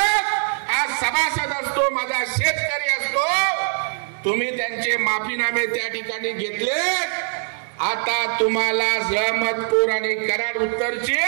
आज सभासद असतो, माझा शेतकरी असतो. तुम्ही त्यांचे माफीनामे त्या ठिकाणी घेतले. आता तुम्हाला रहमतपूर आणि कराड उत्तरची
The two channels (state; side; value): silent; left; 56 dB below the other